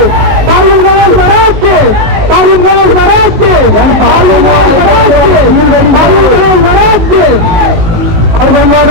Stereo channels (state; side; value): late; left; 19 ms